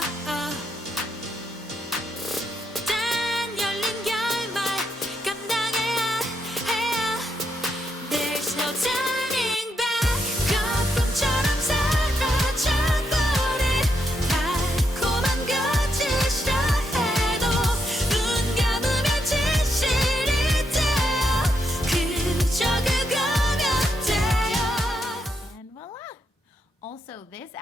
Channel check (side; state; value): both; normal; correlation 0.80